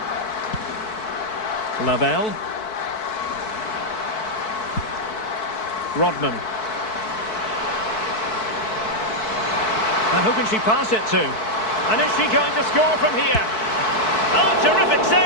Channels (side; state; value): right; late; 4.6 ms